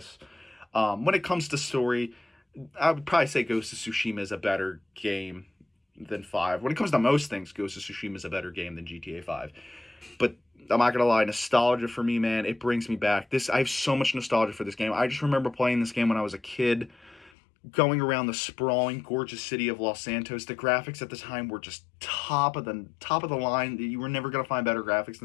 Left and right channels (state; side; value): drops out; right; at 17.3 s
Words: When it comes to story, I would probably say Ghost of Tsushima is a better game than 5. When it comes to most things, Ghost of Tsushima is a better game than GTA 5. But I'm not gonna lie, nostalgia for me, man, it brings me back. I have so much nostalgia for this game. I just remember playing this game when I was a kid, going around the sprawling, gorgeous city of Los Santos. The graphics at the time were just top of the line. You were never gonna find better graphics